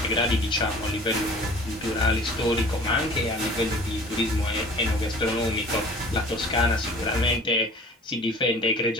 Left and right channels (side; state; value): both; normal; correlation 0.46